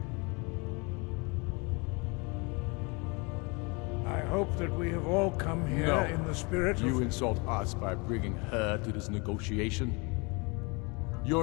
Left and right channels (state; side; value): quieter; right; 29.6 dB